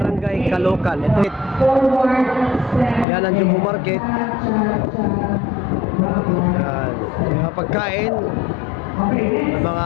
Caloocan. Ito. Yan ang Jumbo Market. Yan. Mga pagkain, mga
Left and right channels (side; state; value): right; drops out; at 3.1 s